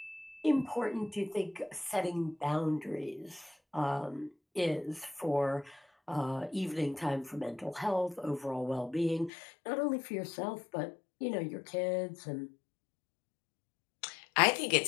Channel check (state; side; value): drops out; right; at 9.3 s